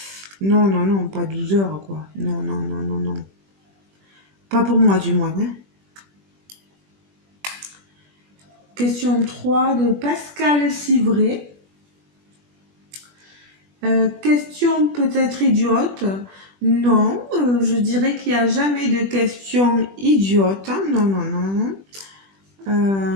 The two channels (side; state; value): left; late; 20 ms